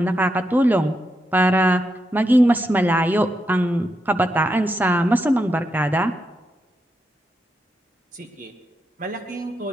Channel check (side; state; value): both; normal; correlation 0.84